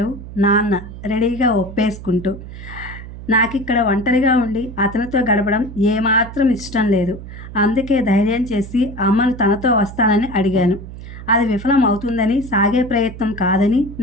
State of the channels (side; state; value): right; noise; hum, 13 dB below the sound